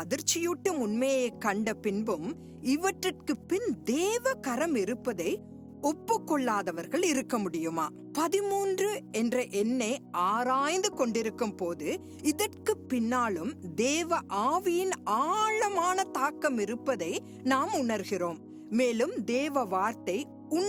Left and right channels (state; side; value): identical; both; correlation 1.00